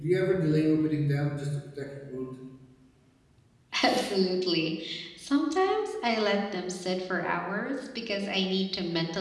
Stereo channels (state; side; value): identical; both; correlation 1.00